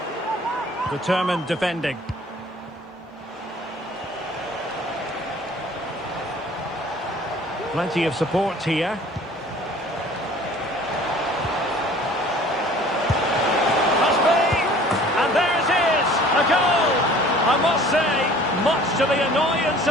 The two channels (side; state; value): both; normal; correlation 0.49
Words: Determined defending. Plenty of support here.